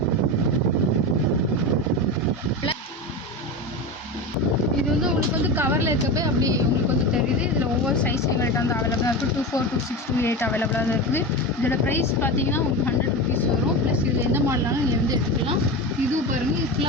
இது வந்து உங்களுக்கு வந்து கவரில் இருக்கப்போ அப்படி உங்களுக்கு வந்து தெரியுது. இதில் ஒவ்வொரு சைஸ் எங்கள்கிட்ட வந்து அவைலபிளாக இருக்குது. 24, 26, 28 அவைலபிளாக தான் இருக்குது. இதோட ப்ரைஸ் பார்த்தீங்கன்னா உங்களுக்கு 100 ருபீஸ் வரும். ப்ளஸ் இதில் எந்த மாடலாலும் நீங்கள் வந்து எடுத்துக்கலாம். இதுவும் பாருங்கள், இது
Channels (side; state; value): both; normal; correlation 0.23